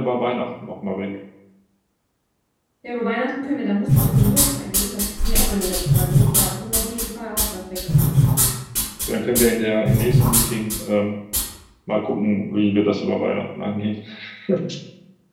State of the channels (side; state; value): both; identical; correlation 1.00